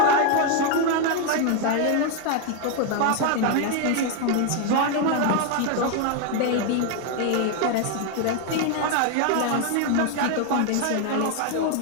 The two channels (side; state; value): both; different; correlation 0.01